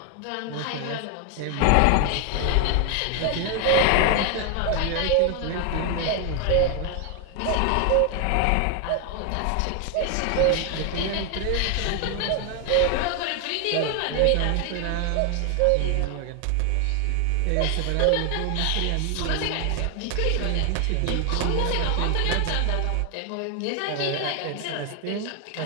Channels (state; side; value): different; both; correlation 0.01